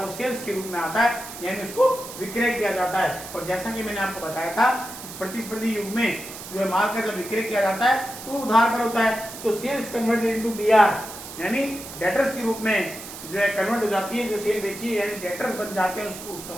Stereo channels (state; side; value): noise; right; hiss, 12 dB below the sound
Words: वो सेल्स के रूप में आता है, यानी उसको विक्रय किया जाता है। और जैसा कि मैंने आपको बताया था, इस प्रतिस्पर्धी युग में जो है माल का जब विक्रय किया जाता है तो उधार पर होता है, तो सेल्स कन्वर्टेड इनटू बीआर, यानी डेटर्स के रूप में जो है कन्वर्ट हो जाती है। जो सेल बेची है यानी डेटर्स बन जाते हैं उस